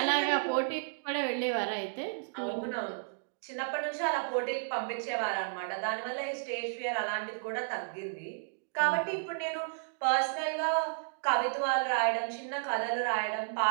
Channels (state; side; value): silent; left; digital silence